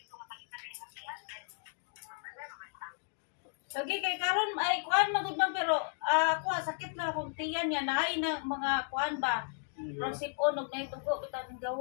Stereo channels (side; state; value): right; silent; digital silence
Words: Lagi kay karon ay kuan magud man pero ako sakit na akong tiyan yan ay na mga kuan ba. Pero sipon og nay tugo bitaw ning